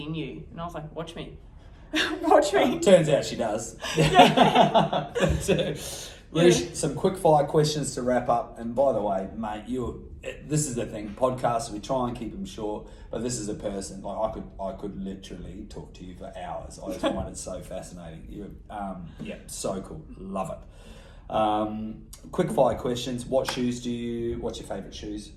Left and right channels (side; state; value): both; identical; correlation 1.00